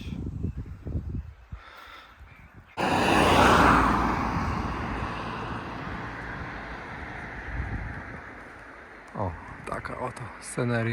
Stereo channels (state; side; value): identical; both; correlation 1.00